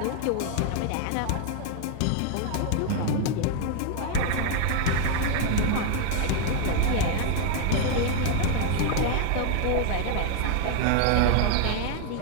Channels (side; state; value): both; different; correlation 0.00